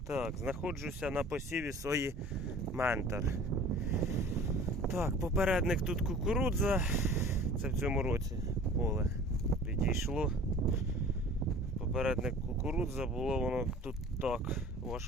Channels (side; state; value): both; normal; correlation 0.45